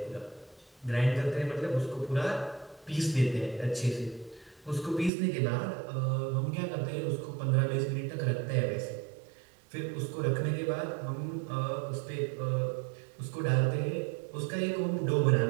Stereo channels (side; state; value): left; drops out; at 5.1 s